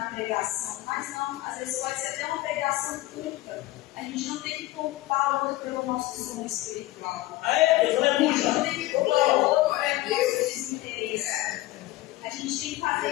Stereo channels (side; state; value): right; quieter; 17.6 dB